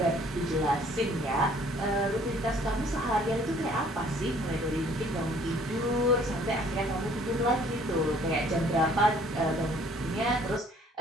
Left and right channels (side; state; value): both; normal; correlation 0.58